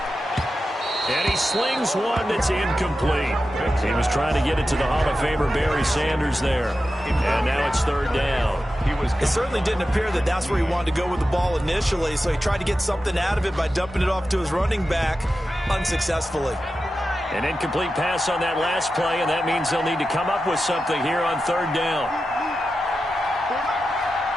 And he slings one that's incomplete. He was trying to get it to the Hall of Famer Barry Sanders there. And now it's 3rd down. It certainly didn't appear that that's where he wanted to go with the ball initially, so he tried to get something out of it by dumping it off to his running back unsuccessfully. An incomplete pass on that last play, and that means they'll need to come up with something here on 3rd down.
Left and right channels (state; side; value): normal; both; correlation 0.92